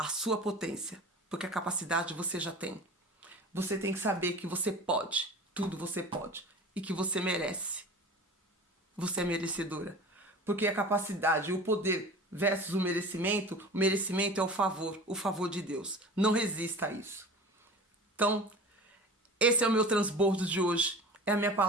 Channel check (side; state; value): both; normal; correlation 0.37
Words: sua potência, porque a capacidade você já tem. Você tem que saber que você pode, tudo você pode, e que você merece. Você é merecedora. Porque a capacidade, o poder versus o merecimento é o favor de Deus. Não resista a isso. Então, esse é o meu transbordo de hoje. É a minha